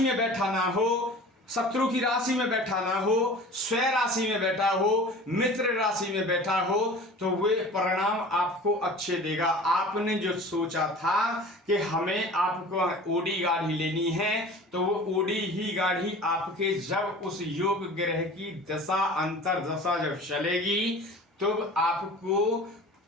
बैठा ना हो, शत्रु की राशि में बैठा ना हो, स्वय राशि में बैठा हो, मित्र राशि में बैठा हो, तो वे परिणाम आपको अच्छे देगा। आपने जो सोचा था कि हमें आपको ओडी गाढ़ी लेनी है, तो वो ओडी ही गाढ़ी आपके जब उस योग ग्रह की दशा अंतर दशा जब चलेगी तब आपको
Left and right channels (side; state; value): both; normal; correlation 0.41